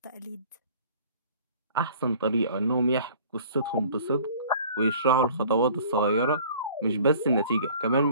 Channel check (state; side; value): inverted; both; correlation -0.49